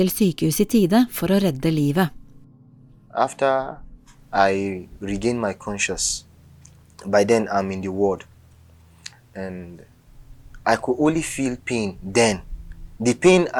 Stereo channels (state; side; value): identical; both; correlation 1.00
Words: sykehus i tide for å redde livet. After I regained my conscience, by then I'm in the ward, and I could only feel pain then. The pain